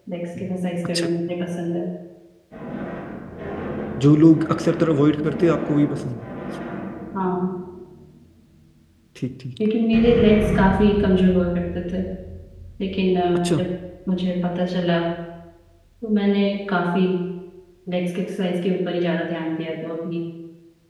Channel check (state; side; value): identical; both; correlation 1.00